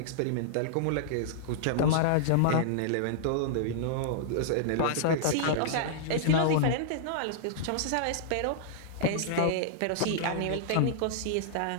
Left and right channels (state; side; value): different; both; correlation -0.01